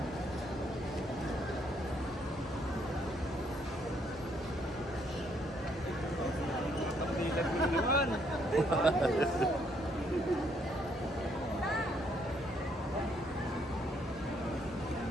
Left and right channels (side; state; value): both; normal; correlation 0.70